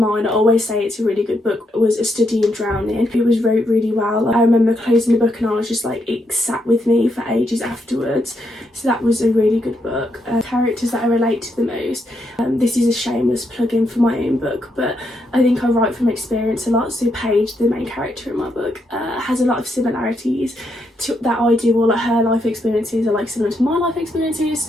I always say it's a really good book, was A Study in Drowning. It was wrote really well. I remember closing the book and I was just like, it sat with me for ages afterwards. So that was a really good book. Characters that I relate to the most. This is a shameless plug-in for my own book, but I think I write from experience a lot. So Paige, the main character in my book, has a lot of similarities to that I do, or like her life experiences are like similar to my life experiences.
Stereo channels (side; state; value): both; normal; correlation 0.79